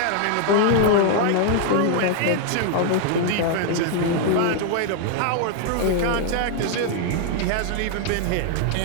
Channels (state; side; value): different; both; correlation 0.00